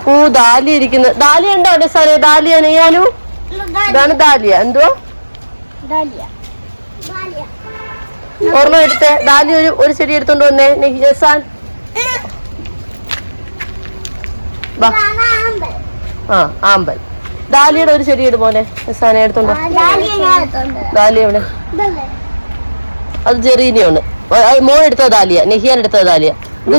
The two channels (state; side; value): inverted; both; correlation -1.00